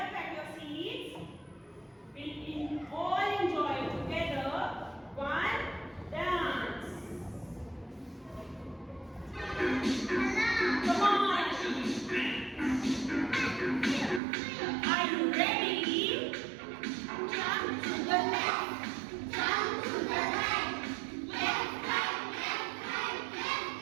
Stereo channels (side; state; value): left; drops out; at 14.2 s